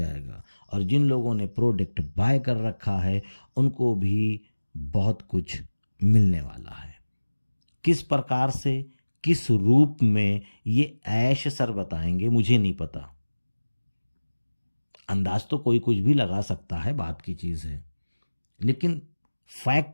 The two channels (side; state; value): both; inverted; correlation -1.00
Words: और जिन लोगों ने प्रोडक्ट बाय कर रखा है उनको भी बहुत कुछ मिलने वाला है। किस प्रकार से, किस रूप में, ये ऐश सर बताएंगे, मुझे नहीं पता। अंदाज तो कोई कुछ भी लगा सकता है, बात की चीज़ है, लेकिन